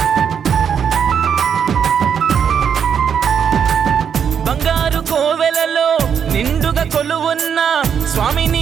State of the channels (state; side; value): quieter; left; 7.6 dB